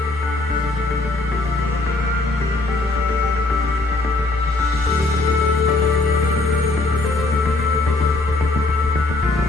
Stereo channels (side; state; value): right; quieter; 3.0 dB